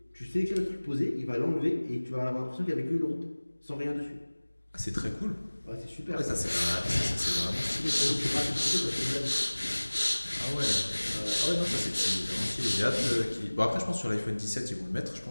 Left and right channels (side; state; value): both; inverted; correlation -1.00